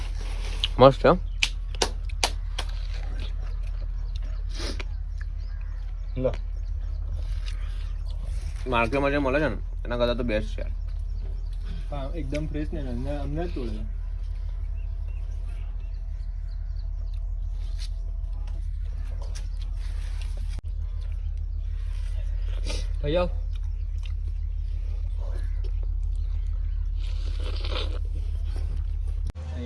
મસ્ત છે. લો માર્કેટમાં જે મળે છે ને એના કરતાં તો બેસ્ટ છે યાર. હા એકદમ ફ્રેશ ને અમને જ તોડે. ભૈયા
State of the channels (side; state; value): both; identical; correlation 1.00